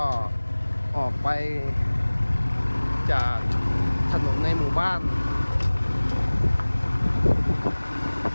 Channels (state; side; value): inverted; both; correlation -1.00